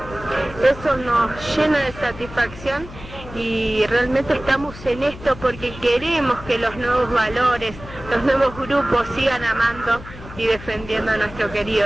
Eso nos llena de satisfacción, y realmente estamos en esto porque queremos que los nuevos valores, los nuevos grupos sigan amando y defendiendo a nuestro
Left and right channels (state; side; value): noise; left; hum, 15 dB below the sound